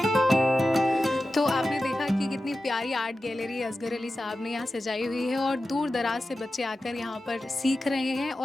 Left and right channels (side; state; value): both; normal; correlation 0.93